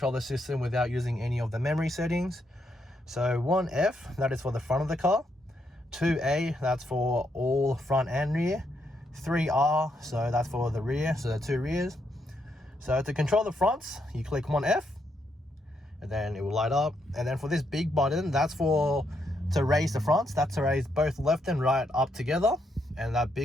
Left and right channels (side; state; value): both; normal; correlation 0.78